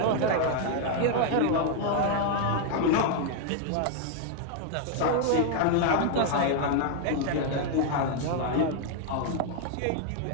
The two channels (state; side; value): different; both; correlation 0.00